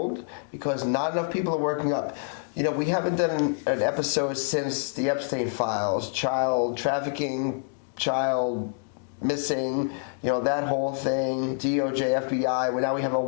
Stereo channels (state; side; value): silent; right; digital silence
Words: because not enough people are waking up. We haven't done an episode since the Epstein files, child trafficking, child missing, that whole thing, DOJ, FBI. Well, now we have a